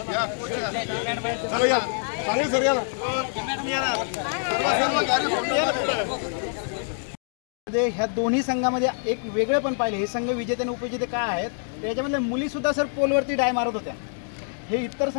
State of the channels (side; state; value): right; silent; digital silence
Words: या चांगले सर या ना. ह्या दोन्ही संघामध्ये एक वेगळं पण पाहिलं. हे संघ विजेते आणि उपविजेते काय आहेत त्याच्यामधल्या मुली सुद्धा सर पोलवरती डाय मारत होत्या. हे इतर